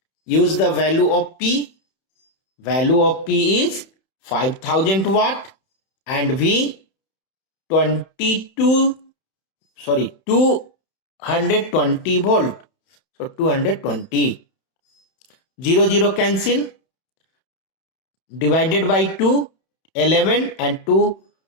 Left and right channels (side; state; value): right; late; 31 ms